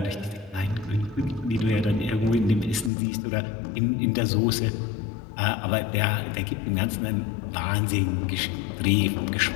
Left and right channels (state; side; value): drops out; right; at 2.9 s